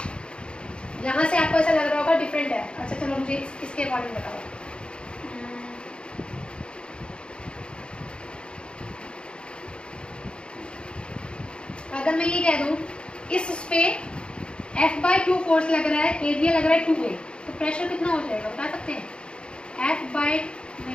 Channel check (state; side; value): late; right; 0.055 ms